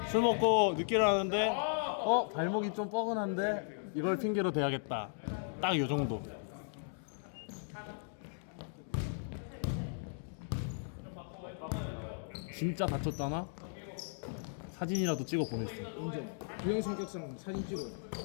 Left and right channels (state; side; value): silent; right; digital silence